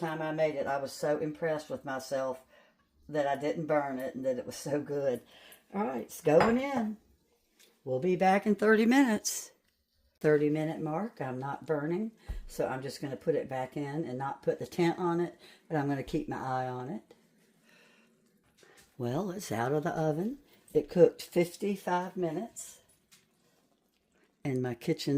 I made it, I was so impressed with myself that I didn't burn it and that it was so good. All right, it's going in. We'll be back in 30 minutes. 30-minute mark, I'm not burning, so I'm just going to put it back in and not put the tent on it, but I'm going to keep my eye on it. Well, it's out of the oven. It cooked 55 minutes, and my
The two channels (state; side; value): identical; both; correlation 1.00